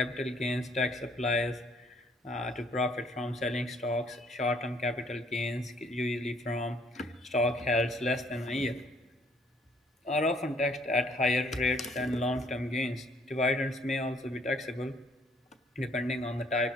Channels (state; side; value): normal; both; correlation 0.63